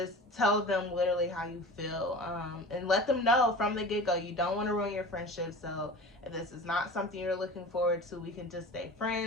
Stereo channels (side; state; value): both; normal; correlation 0.36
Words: tell them literally how you feel, and let them know from the get-go you don't want to ruin your friendship. So if this is not something you're looking forward to, we can just stay